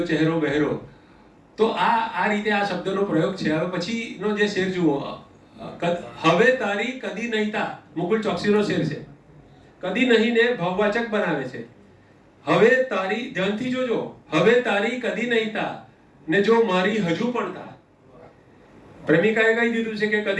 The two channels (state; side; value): identical; both; correlation 1.00